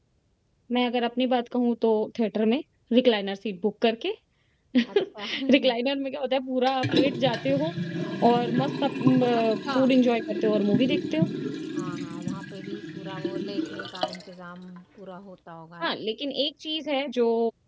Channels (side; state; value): both; identical; correlation 1.00